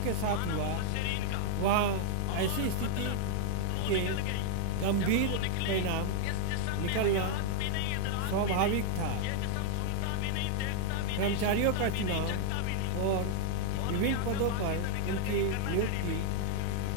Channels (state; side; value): different; both; correlation 0.00